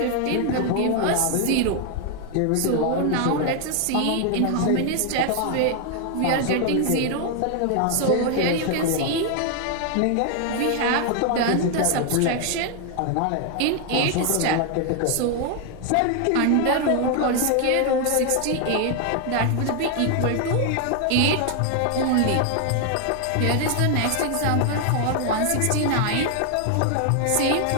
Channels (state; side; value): different; both; correlation 0.00